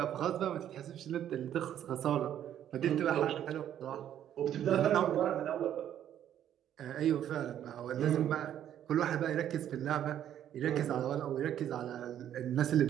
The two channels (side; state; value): left; quieter; 10.6 dB